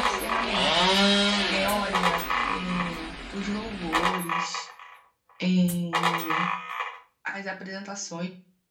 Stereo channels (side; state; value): both; identical; correlation 1.00